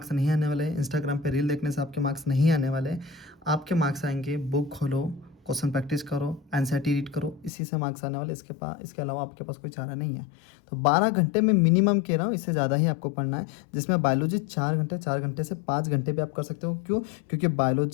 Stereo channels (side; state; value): right; drops out; at 7.5 s